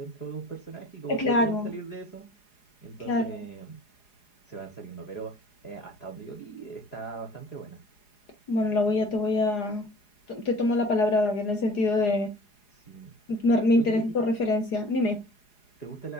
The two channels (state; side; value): late; right; 4.8 ms